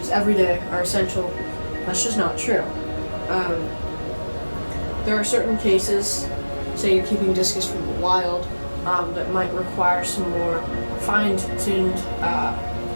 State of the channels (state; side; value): inverted; both; correlation -1.00